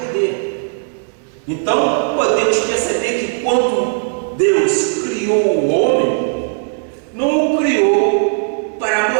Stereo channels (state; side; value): silent; left; digital silence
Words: poder. Então podemos perceber que quando Deus criou o homem, não o criou para